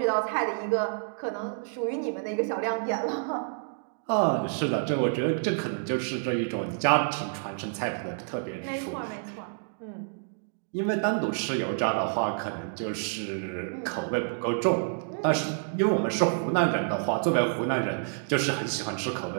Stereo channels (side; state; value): left; silent; digital silence